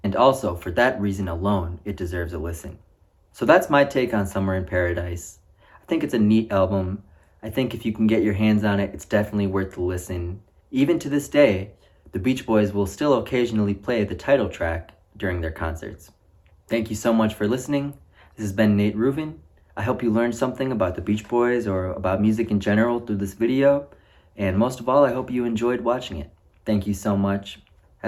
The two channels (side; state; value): both; identical; correlation 1.00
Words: and also, for that reason alone, it deserves a listen. So that's my take on Summer in Paradise. I think it's a neat album. I think if you can get your hands on it, it's definitely worth the listen. Even to this day, the Beach Boys will still occasionally play the title track during their concerts. Thank you so much for listening. This has been Nate Ruvin. I hope you learned something about the Beach Boys or about music in general through this video. And most of all, I hope you enjoyed watching it. Thank you so much.